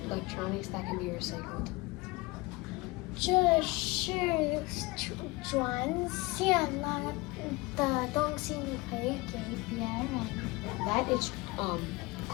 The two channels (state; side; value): quieter; right; 23.2 dB